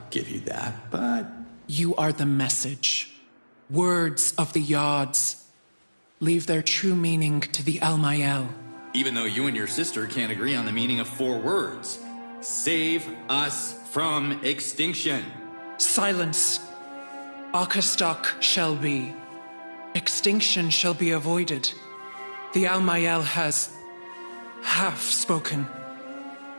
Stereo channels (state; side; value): inverted; both; correlation -1.00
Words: give you that, but... You are the message. Words of the Yods. Leave their true meaning to the Almael. Even though you and your sister can't agree on the meaning of 4 words. Save us from extinction. Silence. Akastok shall be. Extinction shall be avoided. The Almael has half spoken.